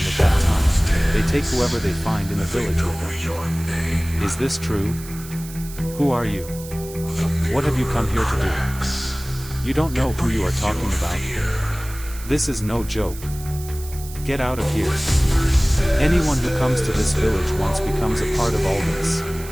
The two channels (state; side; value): noise; right; hiss, 15 dB below the sound